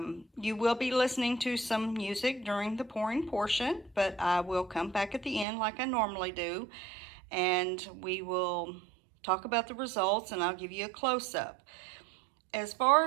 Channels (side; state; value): left; drops out; at 5.5 s